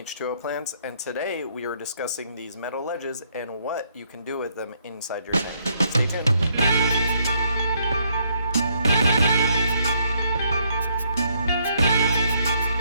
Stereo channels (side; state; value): both; inverted; correlation -0.71